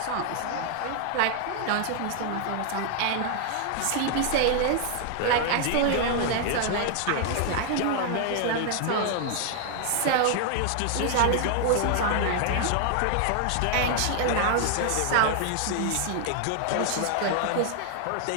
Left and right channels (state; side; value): different; both; correlation 0.00